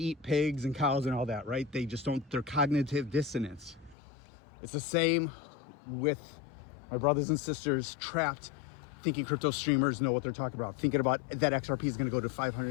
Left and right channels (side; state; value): right; drops out; at 4.0 s